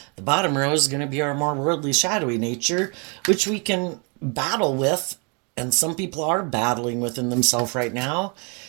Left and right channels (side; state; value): left; quieter; 34.9 dB